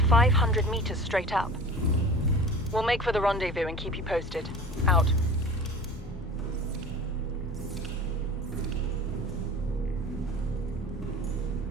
500 meters straight up. We'll make for the rendezvous and keep you posted. Out.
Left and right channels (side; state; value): both; normal; correlation 0.38